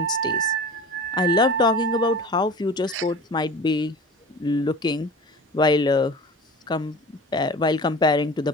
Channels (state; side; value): normal; both; correlation 0.37